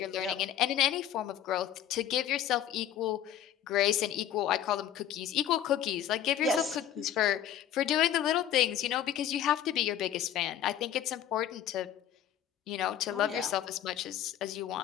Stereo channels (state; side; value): quieter; right; 10.7 dB